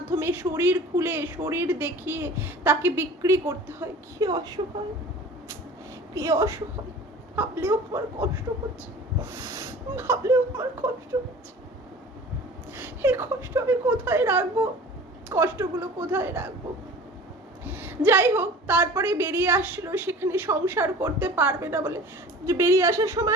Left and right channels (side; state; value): both; normal; correlation 0.42